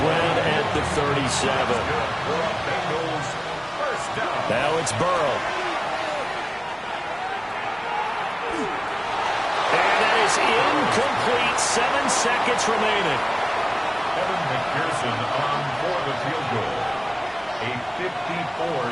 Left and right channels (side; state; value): both; identical; correlation 1.00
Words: ground at the 37. Now it's Burrow. And that is incomplete. 7 seconds remaining. Evan McPherson on for the field goal. A